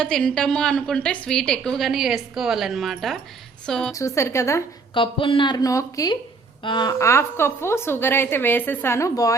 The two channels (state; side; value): quieter; left; 4.4 dB